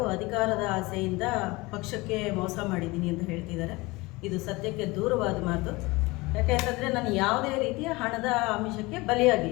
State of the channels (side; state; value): right; quieter; 22.9 dB